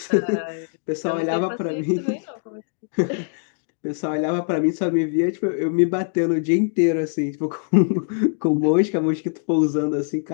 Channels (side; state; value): right; silent; digital silence